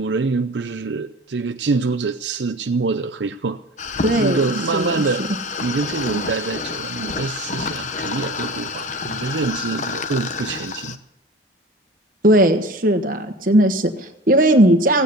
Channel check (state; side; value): normal; both; correlation 0.37